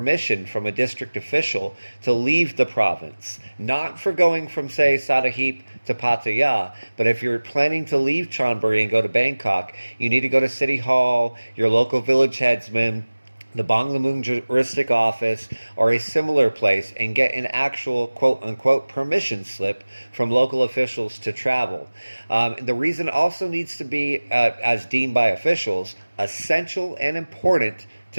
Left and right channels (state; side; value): inverted; both; correlation -1.00